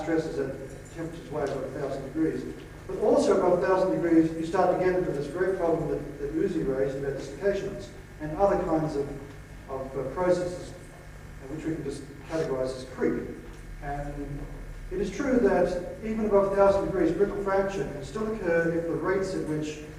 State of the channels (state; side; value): identical; both; correlation 1.00